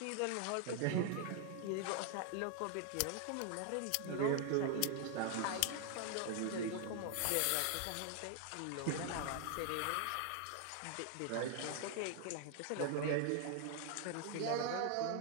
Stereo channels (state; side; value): different; both; correlation 0.00